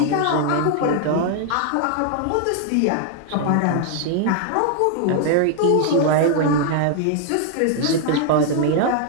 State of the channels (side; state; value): both; different; correlation 0.00